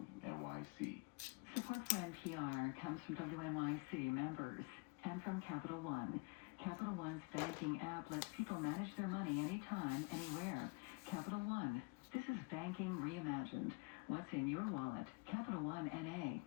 Support for NPR comes from WNYC members and from Capital One. Capital One's banking app lets people manage their money anytime, anywhere. Capital One. This is banking reimagined. What's in your wallet? Capital One NA.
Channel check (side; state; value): right; quieter; 30.1 dB